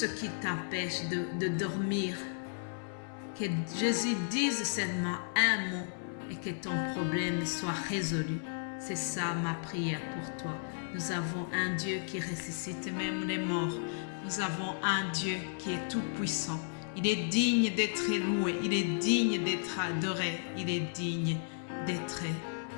qui t'empêche de dormir, que Jésus dise seulement un mot et que ton problème soit résolu. C'est ça ma prière pour toi. Nous avons un Dieu qui ressuscite même les morts. Nous avons un Dieu qui est tout puissant. Il est digne d'être loué. Il est digne d'être adoré. Il est digne d'être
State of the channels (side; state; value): right; silent; 55 dB below the other